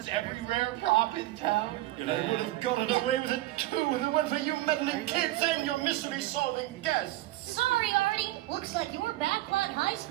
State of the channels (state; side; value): quieter; left; 16.8 dB